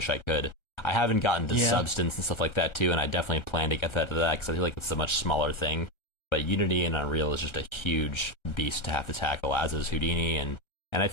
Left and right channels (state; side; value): late; right; 1.4 ms